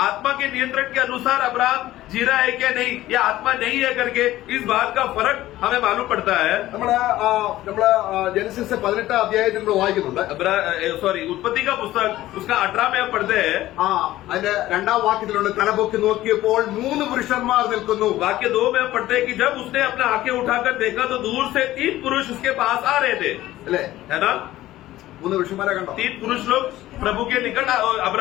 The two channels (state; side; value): quieter; right; 15.4 dB